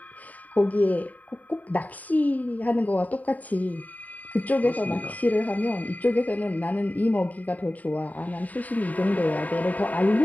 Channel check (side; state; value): right; late; 0.074 ms